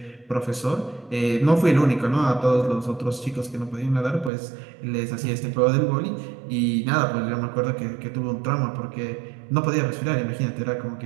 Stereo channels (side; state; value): left; drops out; at 4.3 s